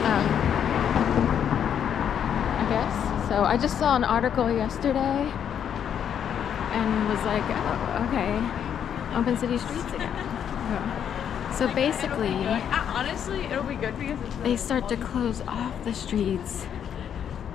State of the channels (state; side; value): quieter; right; 8.8 dB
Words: I guess. So I just saw an article yesterday and was like, oh, okay, open city streets again. So basically, honestly, it'll be good because they start to close off the streets